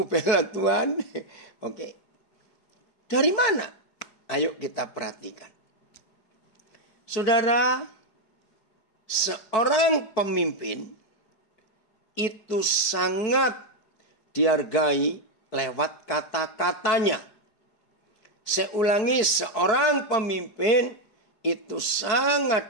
bela Tuhan. Oke. Dari mana? Ayo kita perhatikan. Saudara, seorang pemimpin itu sangat dihargai lewat kata-katanya. Saya ulangi, seorang pemimpin itu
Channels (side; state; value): right; late; 4.6 ms